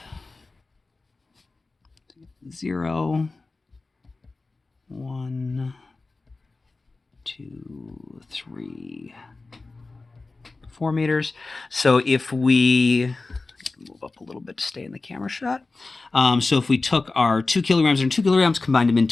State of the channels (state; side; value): quieter; right; 3.6 dB